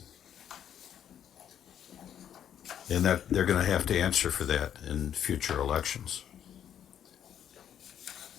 And that they're going to have to answer for that in future elections.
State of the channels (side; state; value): right; quieter; 9.7 dB